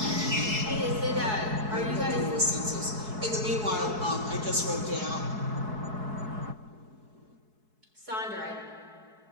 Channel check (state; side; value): late; left; 4.7 ms